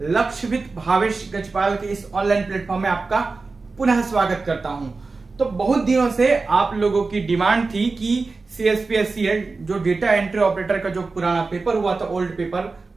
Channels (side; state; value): left; quieter; 3.9 dB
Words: लक्षवित भावेश गजपाल के इस online platform में आपका पुनः स्वागत करता हूं। तो बहुत दिनों से आप लोगों की डिमांड थी कि CSPSCL जो डेटा एंट्री ऑपरेटर का जो पुराना पेपर हुआ था, ओल्ड पेपर,